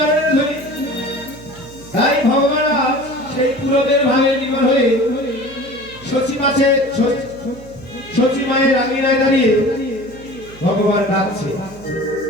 ধুলি। তাই ভগবান সেই পুরবের ভাবে নির্ভর হয়ে শচী মায়ের আঙিনায় দাঁড়িয়ে ভগবান ডাকছে।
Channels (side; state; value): right; noise; hum, 20 dB below the sound